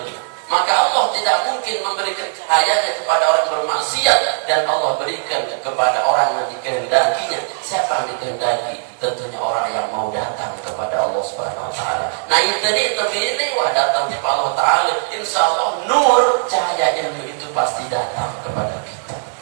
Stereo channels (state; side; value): silent; left; 66 dB below the other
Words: Maka Allah tidak mungkin memberikan cahayanya kepada orang bermaksiat, dan Allah berikan kepada orang yang dikehendakinya. Siapa yang dikehendaki? Tentunya orang yang mau datang kepada Allah Subhanahu wa taala. Nah, itu terpilih wah datang kepada Allah taala. Insyaallah nur cahayanya itu pasti datang kepada kita.